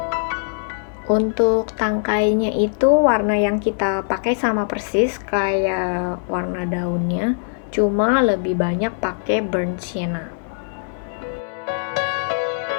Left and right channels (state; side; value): silent; right; 61 dB below the other